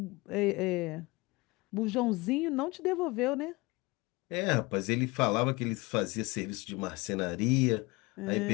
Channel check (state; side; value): quieter; right; 24.0 dB